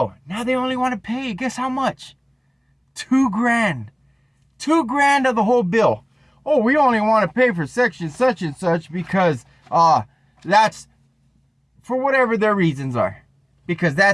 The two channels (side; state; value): both; identical; correlation 1.00